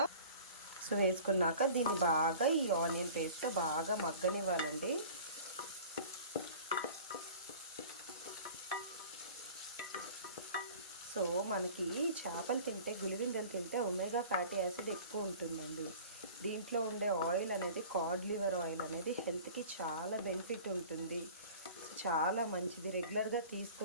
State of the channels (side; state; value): both; inverted; correlation -0.43